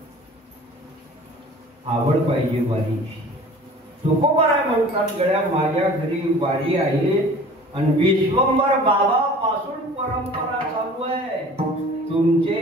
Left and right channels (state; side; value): normal; both; correlation 0.45